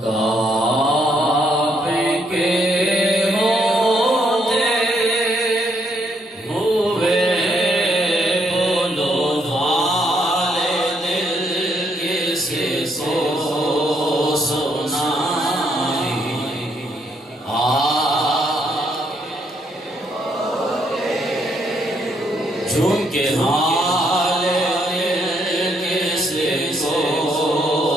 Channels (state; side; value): normal; both; correlation 0.73